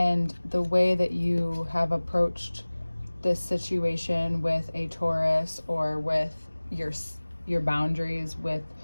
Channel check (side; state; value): both; inverted; correlation -1.00